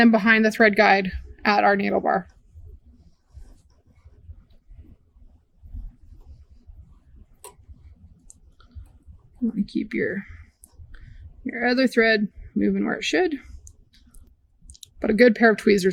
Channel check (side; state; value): both; identical; correlation 1.00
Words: behind the thread guide at our needle bar. You want to keep your other thread moving where it should. But a good pair of